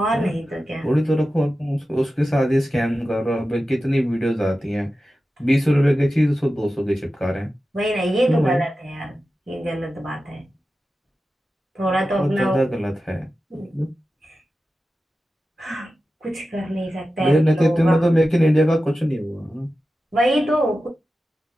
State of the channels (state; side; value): normal; both; correlation 0.93